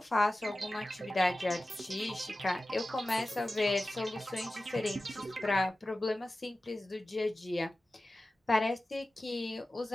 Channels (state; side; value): normal; both; correlation 0.95